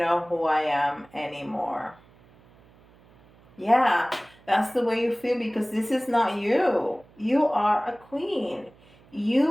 who I am anymore. Yeah, that's the way you feel because this is not you. You are a queen.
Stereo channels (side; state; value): right; noise; hum, 28 dB below the sound